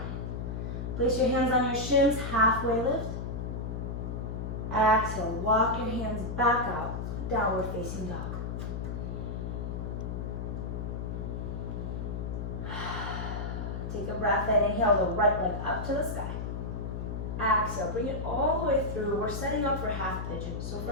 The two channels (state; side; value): noise; left; hum, 4 dB below the sound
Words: Place your hands on your shins, halfway lift. Exhale, walk your hands back out, downward facing dog. Take a breath in, inhale the right leg up to the sky. Exhale, bring it all the way through. We're setting up for half pigeon. So